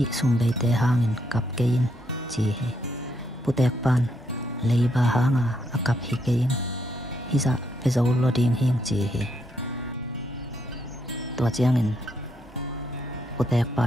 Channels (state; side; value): normal; both; correlation 0.77